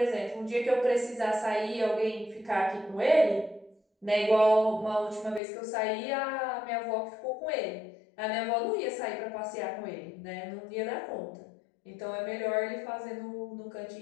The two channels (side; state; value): right; drops out; at 5.4 s